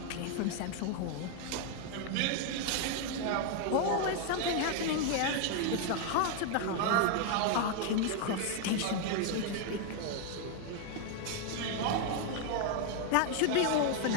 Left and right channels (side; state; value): both; different; correlation 0.01